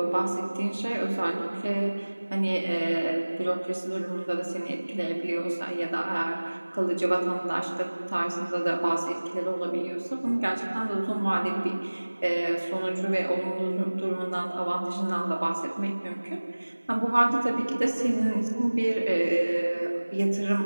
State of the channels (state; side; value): inverted; both; correlation -1.00